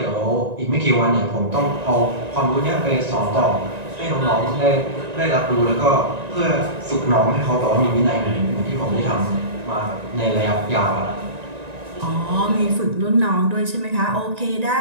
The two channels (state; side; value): late; left; 1.9 ms